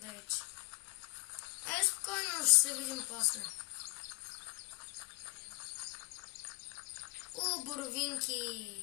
Спокойно, ще се видим после. Боровинки!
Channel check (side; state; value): right; quieter; 28.7 dB